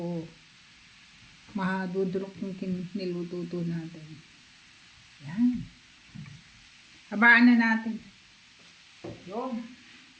mahadudurok yung nilututo natin. Yan. Habaan na natin. Yun.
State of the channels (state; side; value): identical; both; correlation 1.00